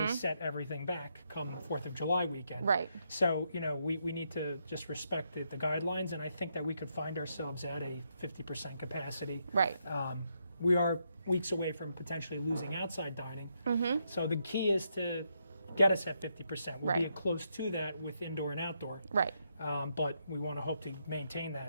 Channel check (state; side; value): inverted; both; correlation -0.79